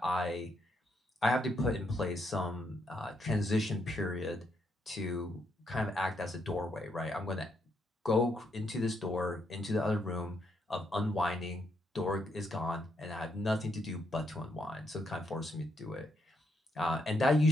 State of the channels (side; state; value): both; normal; correlation 0.77